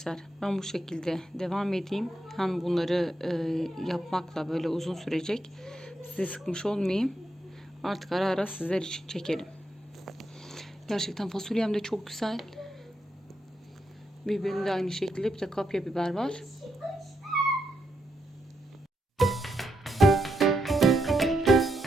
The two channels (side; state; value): both; normal; correlation 0.81